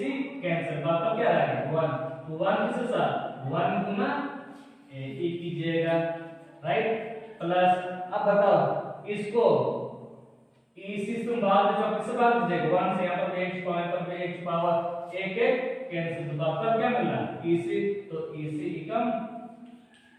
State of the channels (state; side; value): identical; both; correlation 1.00